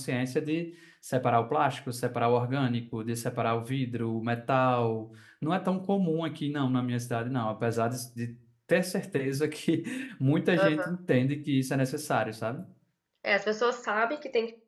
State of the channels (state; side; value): identical; both; correlation 1.00